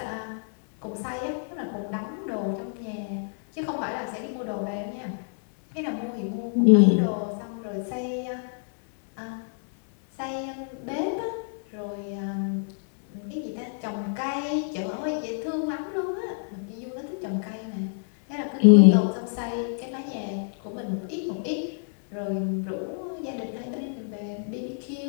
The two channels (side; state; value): right; silent; digital silence